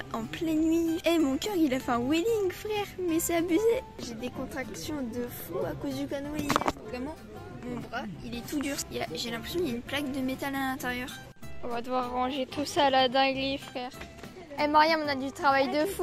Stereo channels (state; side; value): identical; both; correlation 1.00